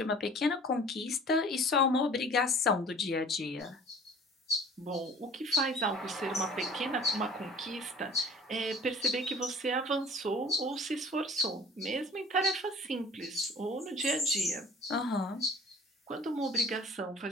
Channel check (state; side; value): normal; both; correlation 0.48